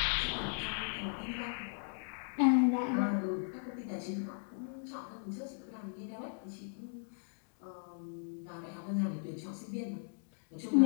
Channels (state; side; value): silent; right; digital silence